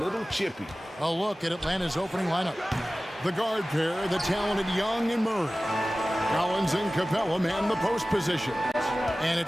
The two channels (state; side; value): normal; both; correlation 0.97